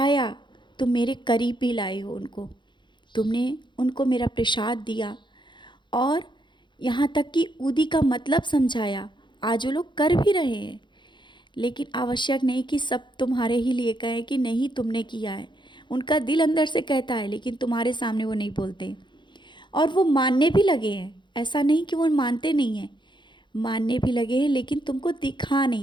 तुम मेरे करीब भी लाए हो उनको। तुमने उनको मेरा प्रसाद दिया और यहाँ तक कि उदी का मतलब समझाया। आज वो लोग कर भी रहे हैं, लेकिन आवश्यक नहीं कि सब तुम्हारे ही लिए कहें कि नहीं तुमने किया है। उनका दिल अंदर से कहता है, लेकिन तुम्हारे सामने वो नहीं बोलते। और वो मानने भी लगे हैं, ऐसा नहीं कि वो मानते नहीं हैं, मानने भी लगे हैं, लेकिन तुमको दिखा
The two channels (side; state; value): right; late; 0.23 ms